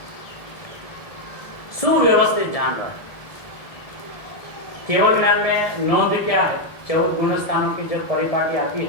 सुव्यवस्थित जान रहा है। केवल ज्ञान में नोंद क्या है? 14 गुण स्थानों की जब परिपाटी आती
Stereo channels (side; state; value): right; late; 1.7 ms